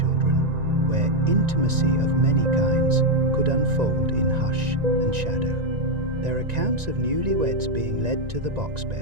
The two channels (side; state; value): left; late; 1.9 ms